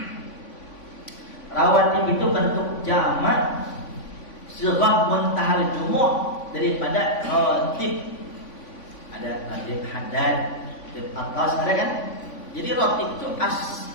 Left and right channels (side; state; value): right; late; 3.5 ms